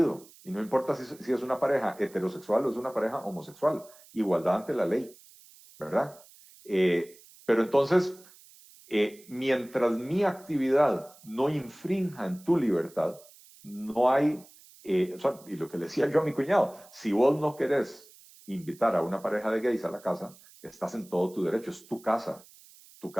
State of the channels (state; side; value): noise; right; hiss, 24 dB below the sound